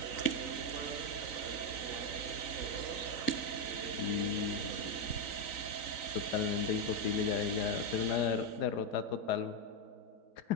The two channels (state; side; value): late; right; 3.9 ms